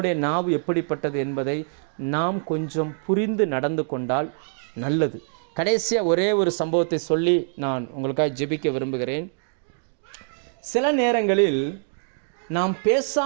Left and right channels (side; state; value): left; silent; digital silence